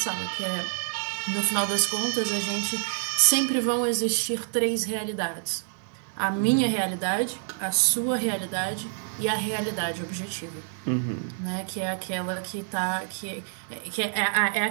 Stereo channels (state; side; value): silent; left; digital silence